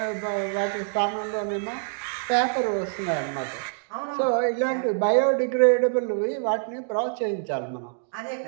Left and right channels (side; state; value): left; silent; 61 dB below the other